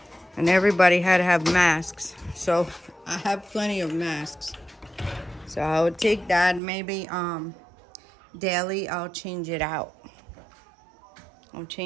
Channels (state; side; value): drops out; left; at 6.6 s